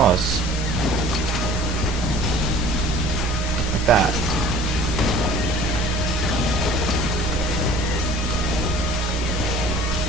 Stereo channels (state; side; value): normal; both; correlation 0.48